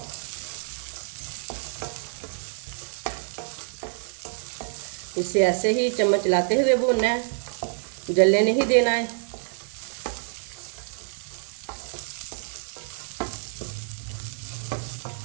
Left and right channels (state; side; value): silent; left; digital silence